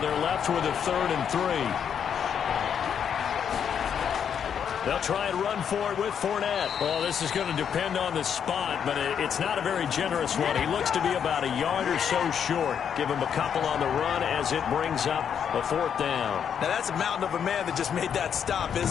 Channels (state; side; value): quieter; right; 8.0 dB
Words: left with a 3rd and 3. They'll try and run for it with Fournette. Well, this is going to depend on the spot, but it's not a very generous one. He looks to be about a yard or so short. Give him a couple on the run as it brings up a 4th down. Now, that's a mountain of a man that just made that stop,